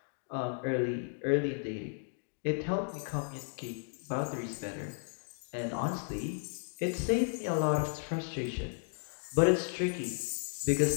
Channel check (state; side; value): silent; right; 55 dB below the other